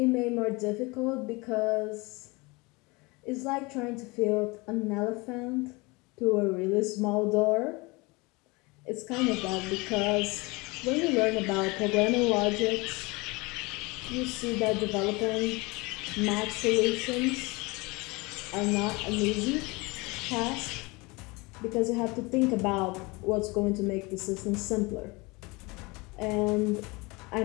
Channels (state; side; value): quieter; right; 25.4 dB